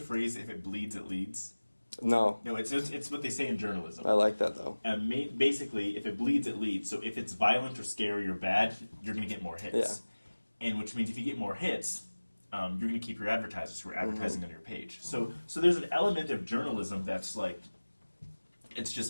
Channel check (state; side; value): inverted; both; correlation -1.00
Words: if it bleeds, it leads. No, it's what they say in journalism. I like that though. And basically, if it bleeds, it leads. So if it's violent or scary or bad, you're going to get more hits. Yeah. And which means if you get more hits, you're going to keep your advertisers who are advertising on your page. So there's an element of journalism that's like, it's